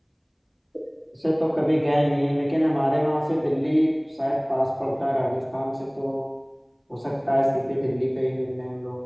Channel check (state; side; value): identical; both; correlation 1.00